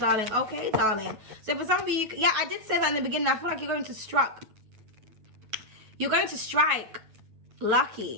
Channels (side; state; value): left; late; 9.4 ms